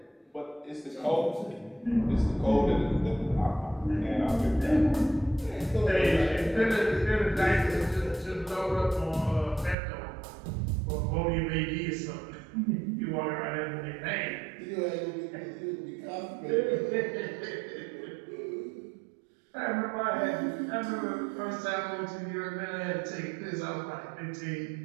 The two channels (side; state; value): left; drops out; at 9.8 s